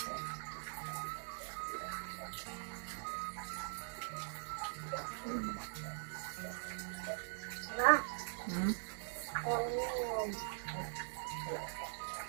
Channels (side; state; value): left; silent; digital silence